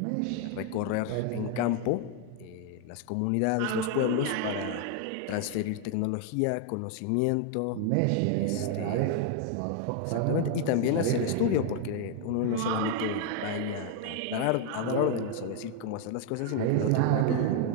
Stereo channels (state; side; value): different; both; correlation 0.00